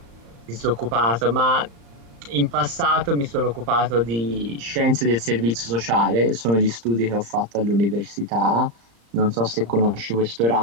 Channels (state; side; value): late; left; 35 ms